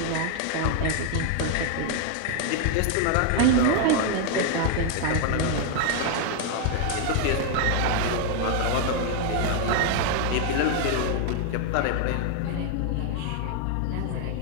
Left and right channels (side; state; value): both; different; correlation 0.00